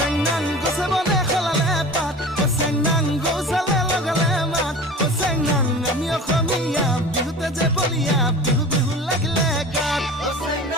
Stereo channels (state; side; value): normal; both; correlation 0.37